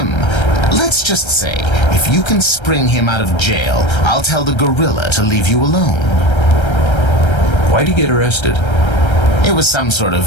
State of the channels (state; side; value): late; right; 1.3 ms